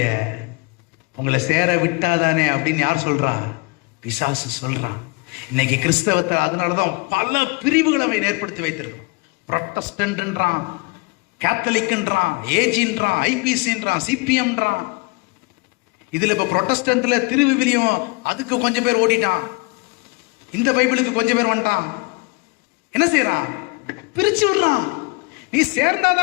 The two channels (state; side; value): quieter; right; 27.8 dB